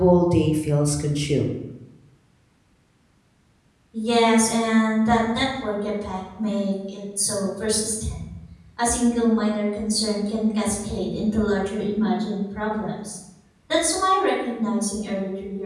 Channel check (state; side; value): identical; both; correlation 1.00